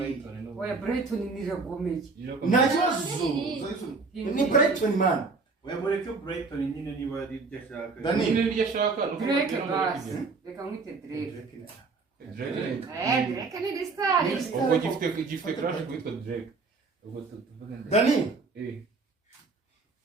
oya Brighton ni ragomeye nta kibazo ni Brighton man webore ko Brighton nyine niba ari byo ashaka Dani ni iryo ashaka Drake basi reka mwite Drake Drake ni Distar ubwo gifite crash kwitwa Drake ubwo tuvuge Dani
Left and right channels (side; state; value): left; quieter; 4.1 dB